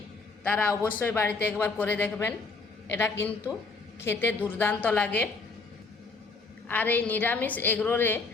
তারা অবশ্যই বাড়িতে একবার করে দেখবেন। এটা কিন্তু খেতে দুর্দান্ত লাগে। আর এই নিরামিষ এগরোলে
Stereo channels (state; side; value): quieter; right; 4.1 dB